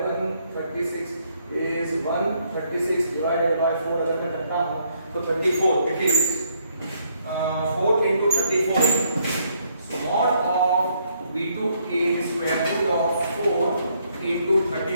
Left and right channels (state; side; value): inverted; both; correlation -0.71